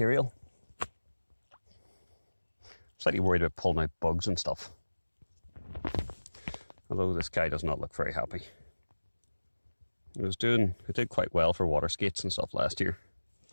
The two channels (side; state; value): both; inverted; correlation -1.00